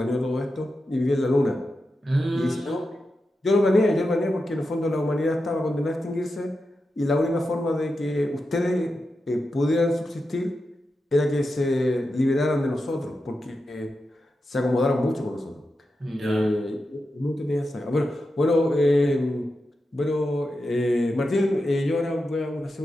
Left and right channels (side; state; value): both; normal; correlation 0.89